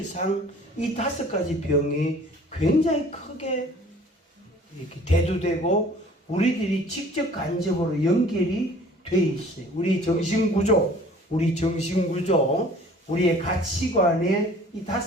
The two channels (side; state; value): both; normal; correlation 0.50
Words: 이 5가지 병이 굉장히 크게 이렇게 대두되고 우리들이 직접 간접으로 연결이 돼 있어요. 우리 정신구조, 우리의 가치관에 이